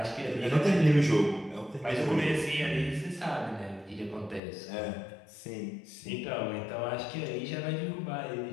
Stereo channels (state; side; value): drops out; right; at 4.4 s